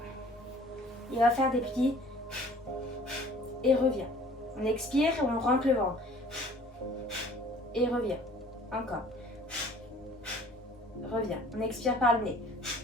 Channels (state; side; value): normal; both; correlation 0.52